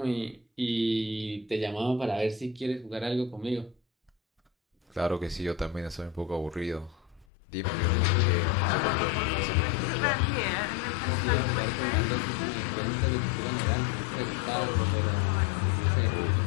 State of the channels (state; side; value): drops out; right; at 7.2 s